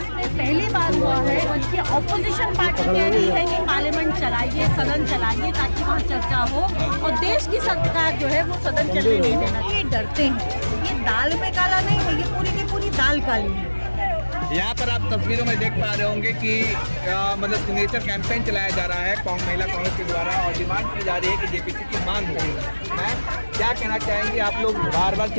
में पहली बार हुआ है कि ऑपोजिशन पार्टी कह रही है कि पार्लियामेंट चलाइए, सदन चलाइए ताकि वहाँ चर्चा हो, और देश की सरकार जो है वो सदन चलने नहीं देना। ये डरते हैं, ये दाल में काला नहीं है, ये पूरी की पूरी दाल काली है। यहाँ पर आप तस्वीरों में देख पा रहे होंगे कि मतलब सिग्नेचर कैंपेन चलाया जा रहा है महिला कांग्रेस के द्वारा, और डिमांड की जा रही है कि जेपीसी की मांग हो। मैं क्या कहना चाहेंगे, आप लोग बार बार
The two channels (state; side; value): inverted; both; correlation -1.00